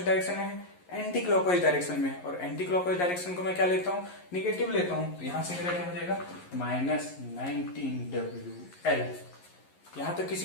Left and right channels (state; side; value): late; right; 11 ms